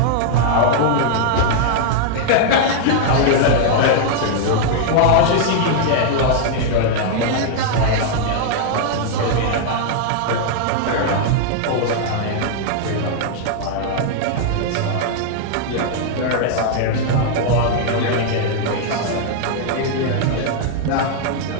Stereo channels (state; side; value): different; both; correlation -0.01